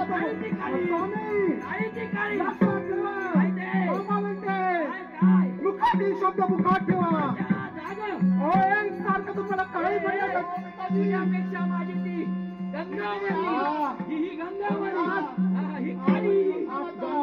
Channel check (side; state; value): both; identical; correlation 1.00